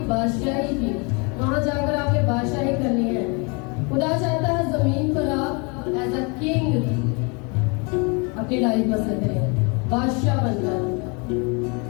बादशाही की, वहाँ जाकर आपने बादशाही करनी है। खुदा चाहता है जमीन पर आप एज अ किंग अपनी लाइफ बसर करें, बादशाह बनकर,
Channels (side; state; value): right; quieter; 31.9 dB